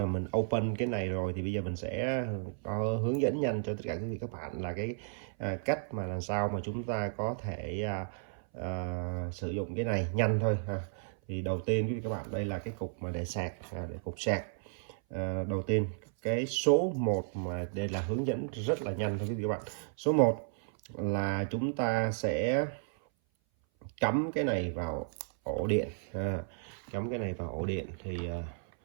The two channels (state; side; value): silent; left; 55 dB below the other